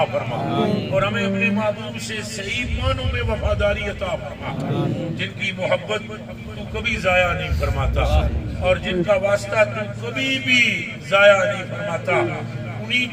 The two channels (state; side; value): identical; both; correlation 1.00